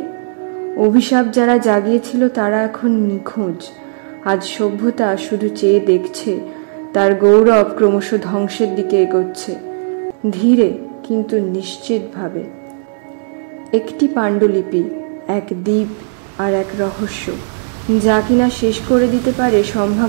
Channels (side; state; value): left; silent; digital silence